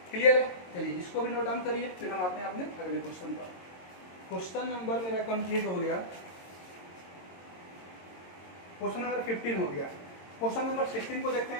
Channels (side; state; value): right; late; 22 ms